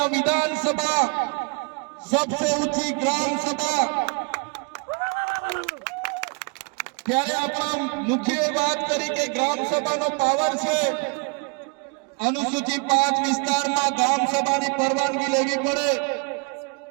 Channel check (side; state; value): left; quieter; 33.1 dB